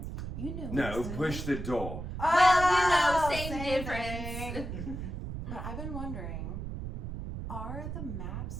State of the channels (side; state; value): right; noise; rumble, 6 dB below the sound